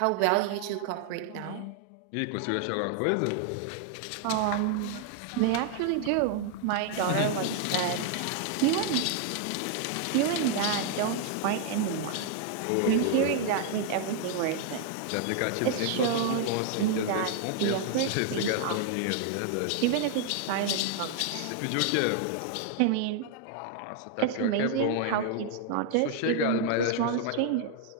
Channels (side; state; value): both; different; correlation 0.00